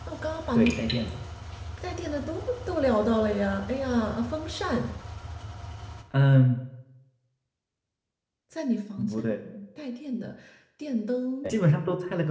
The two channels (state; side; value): identical; both; correlation 1.00